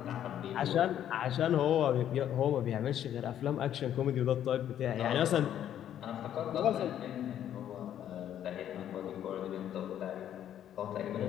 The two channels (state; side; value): quieter; right; 10.6 dB